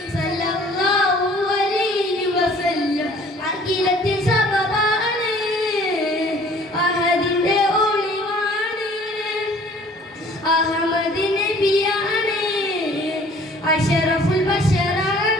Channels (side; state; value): both; normal; correlation 0.53